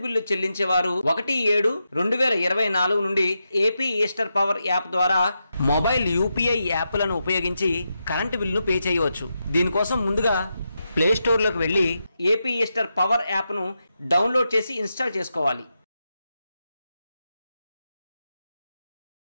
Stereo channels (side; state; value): both; inverted; correlation -0.86